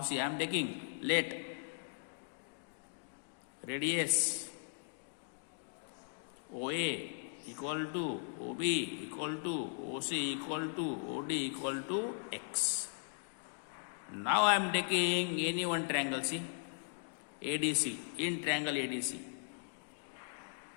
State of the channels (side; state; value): right; silent; digital silence